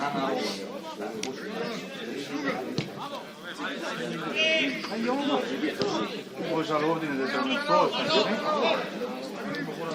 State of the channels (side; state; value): both; identical; correlation 1.00